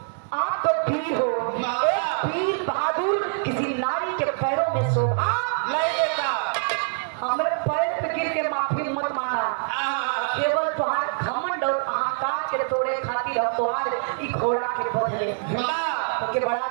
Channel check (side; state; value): left; silent; digital silence